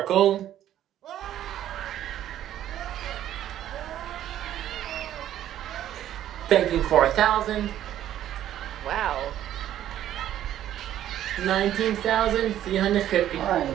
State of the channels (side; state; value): left; quieter; 11.8 dB